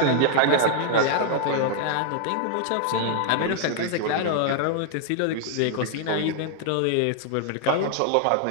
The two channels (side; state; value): both; different; correlation 0.00